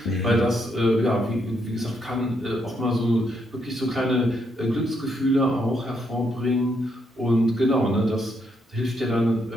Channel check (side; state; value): both; normal; correlation 0.77